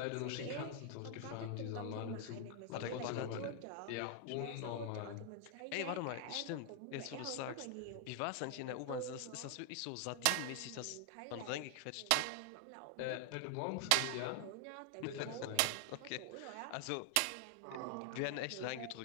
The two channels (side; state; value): both; different; correlation 0.00